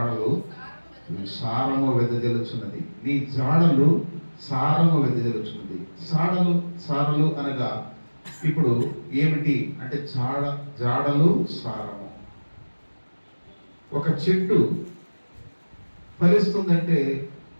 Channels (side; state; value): both; inverted; correlation -1.00